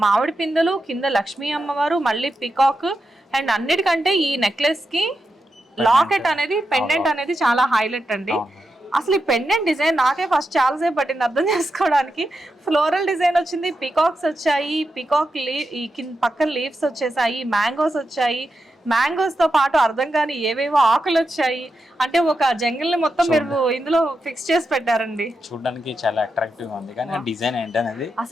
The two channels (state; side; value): normal; both; correlation 0.88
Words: మామిడి పిందెలు, కింద లక్ష్మీ అమ్మవారు, మళ్ళీ పికాక్. అండ్ అన్నిటికంటే ఈ నెక్లెస్ కి లాకెట్ అనేది, పెండెంట్ అనేది చాలా హైలైట్ అండి. అసలు ఈ పెండెంట్ డిజైన్ నాకే ఫస్ట్ చాలాసేపు పట్టింది అర్థం చేసుకోవడానికి. ఫ్లోరల్ డిజైన్ వచ్చింది, పికాక్స్ వచ్చాయి, ఈ పక్కన లీవ్స్ వచ్చేసాయి, మ్యాంగోస్ వచ్చాయి. మ్యాంగోస్ తో పాటు అర్థం కాని ఏవేవో ఆకులు వచ్చాయి. అంటే ఒక జంగిల్ ని మొత్తం మీరు ఇందులో ఫిక్స్ చేసి పెట్టారండి. చూడడానికి చాలా అట్రాక్టివ్ ఉంది, కానీ డిజైన్ ఏంటనేది